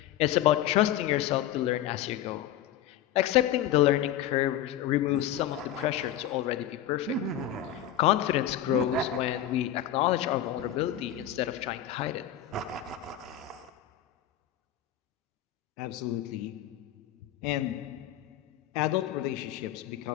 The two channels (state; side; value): quieter; right; 11.3 dB